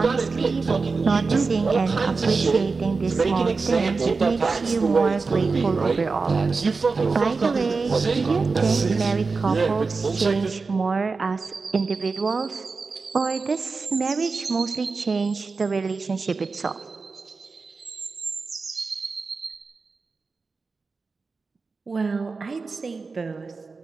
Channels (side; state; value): left; quieter; 4.3 dB